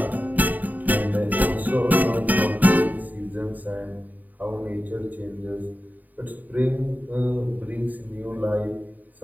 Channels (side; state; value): left; late; 0.082 ms